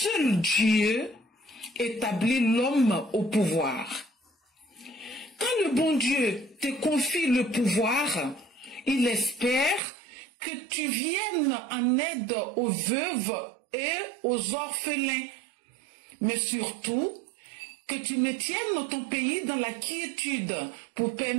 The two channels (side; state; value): left; drops out; at 9.8 s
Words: Dieu établit l'homme au pouvoir. Quand le bon Dieu te confie le pouvoir, il espère que tu viennes en aide aux veuves et aux orphelins, mais surtout que tu maintiennes ton pays dans la quiétude pour